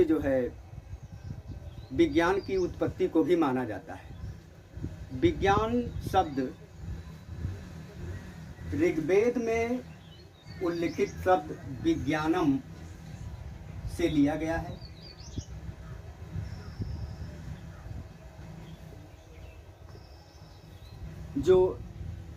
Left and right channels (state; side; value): identical; both; correlation 1.00